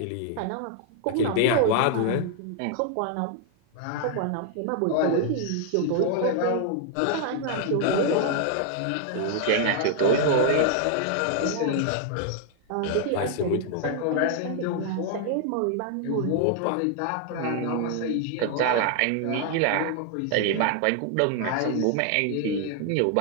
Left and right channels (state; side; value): different; both; correlation 0.00